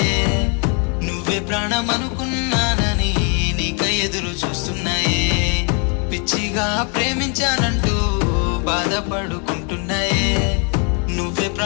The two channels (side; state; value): right; quieter; 36.6 dB